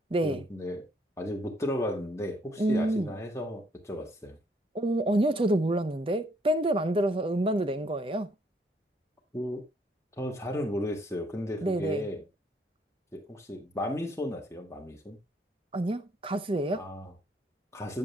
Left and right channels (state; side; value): normal; both; correlation 0.67